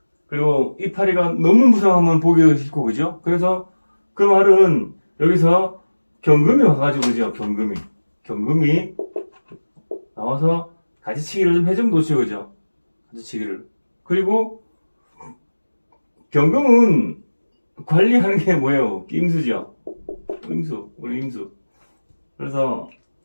그리고 이파리가 너무 무성하면 보기가 싫고, 그죠? 그래서 그 말은 여기서 경금이 와가지고, 그죠? 경금이 나와서 가지치기를 좀 해주면 놓죠, 그죠? 가지치기를. 그리고 경금은 관리하는 게 뭐예요? 임수죠. 임수, 우리 임수. 그래서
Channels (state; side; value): inverted; both; correlation -1.00